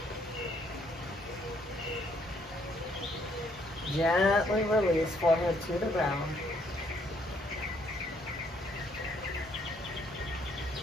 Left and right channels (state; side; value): normal; both; correlation 0.68